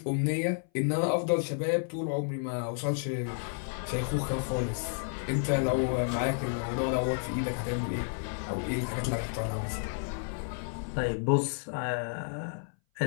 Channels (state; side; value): silent; right; 57 dB below the other